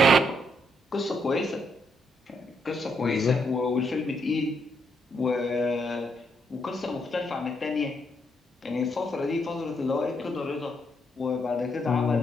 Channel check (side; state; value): both; normal; correlation 0.76